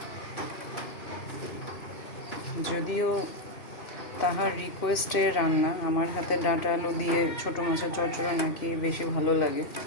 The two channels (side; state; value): right; late; 2.6 ms